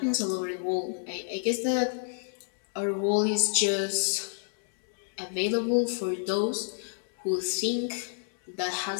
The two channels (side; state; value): right; silent; digital silence